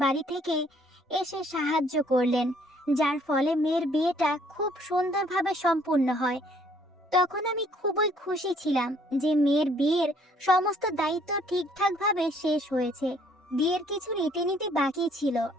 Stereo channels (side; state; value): both; normal; correlation 0.63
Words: বাড়ি থেকে এসে সাহায্য করলেন, যার ফলে মেয়ের বিয়েটা খুব সুন্দরভাবে সম্পূর্ণ হয়। তখন আমি খুবই খুশি ছিলাম যে মেয়ের বিয়ের সমস্ত দায়িত্ব ঠিকঠাকভাবে শেষ হয়েছে। বিয়ের কিছু রীতিনীতি বাকি ছিল,